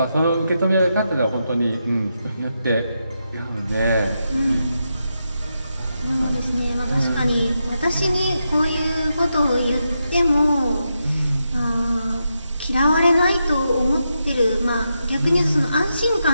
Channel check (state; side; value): inverted; both; correlation -0.85